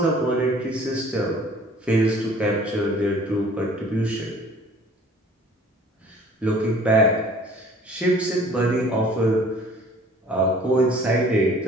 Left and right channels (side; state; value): both; normal; correlation 0.51